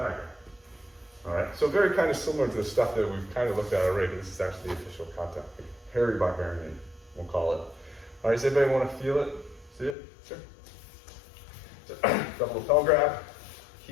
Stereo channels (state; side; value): drops out; right; at 10.0 s